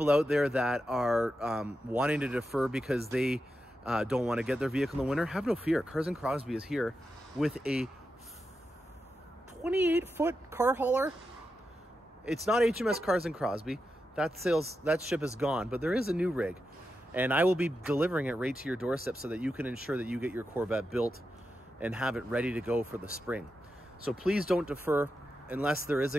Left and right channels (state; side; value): normal; both; correlation 0.88